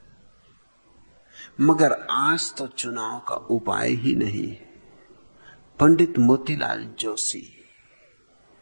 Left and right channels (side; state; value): both; inverted; correlation -1.00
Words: मगर आज तो चुनाव का उपाय ही नहीं है। पंडित मोतीलाल जोशी,